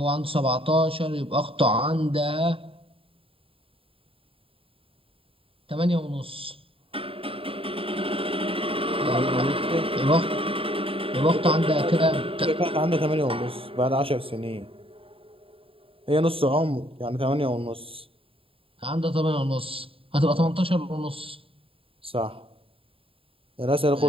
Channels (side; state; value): left; late; 0.27 ms